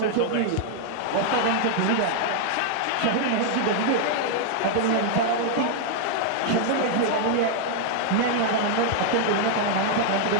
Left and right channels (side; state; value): both; different; correlation 0.00